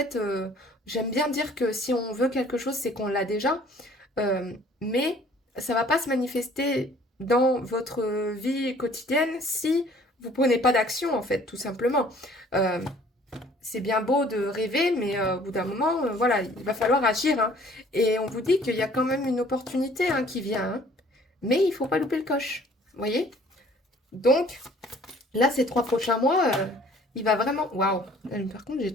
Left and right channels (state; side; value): normal; both; correlation 0.55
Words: j'aime bien dire que si on veut quelque chose, c'est qu'on l'a déjà. Mais ça va pas se manifester dans votre vie quotidienne si vous prenez pas d'action, en fait, tout simplement. Euh, c'est bien beau de rêver, mais au bout d'un moment, voilà, il va falloir agir, hein. Et on vous dit qu'il y a quand même une opportunité, hein, qui vient, hein. Mais il faut pas louper le coche, vous voyez? Donc, là, ces 3 prochains mois, Il va vraiment... Waouh! Par contre, j'ai